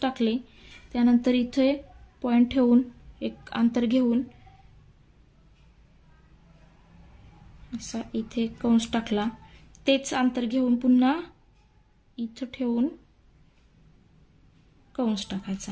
टाकले, त्यानंतर इथे पॉइंट ठेवून एक अंतर घेऊन असा इथे कंस टाकला, तेच अंतर घेऊन पुन्हा इथे ठेवून कंस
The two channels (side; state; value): both; identical; correlation 1.00